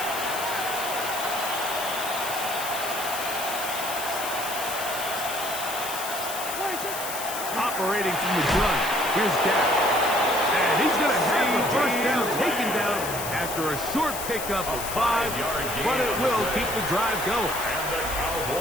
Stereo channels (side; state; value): left; noise; hiss, 7 dB below the sound